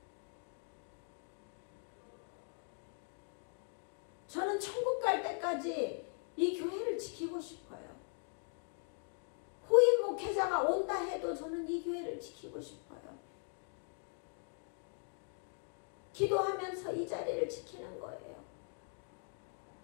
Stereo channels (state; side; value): silent; right; 51 dB below the other